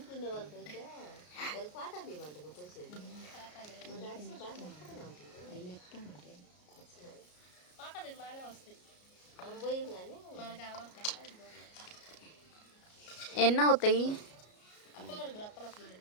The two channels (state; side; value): late; right; 33 ms